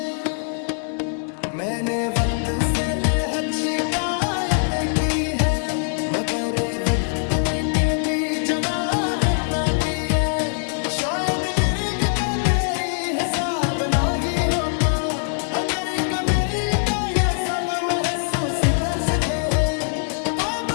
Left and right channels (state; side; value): silent; right; digital silence